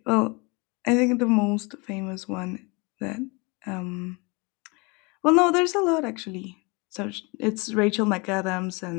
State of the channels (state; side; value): quieter; right; 28.5 dB